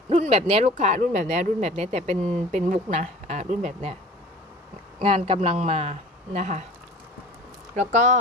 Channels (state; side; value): normal; both; correlation 0.42